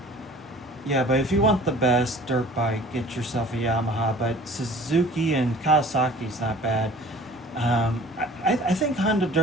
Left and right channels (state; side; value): normal; both; correlation 0.47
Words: yeah. But if you want the best dirt bike, get yourself a Yamaha. But Suzuki and Kawasaki's not bad. I think Honda